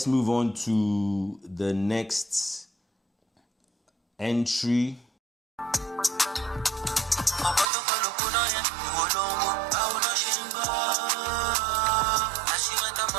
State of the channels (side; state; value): left; drops out; at 7.7 s